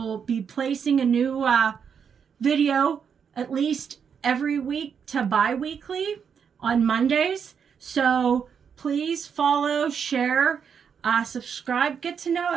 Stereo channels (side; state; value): left; quieter; 7.1 dB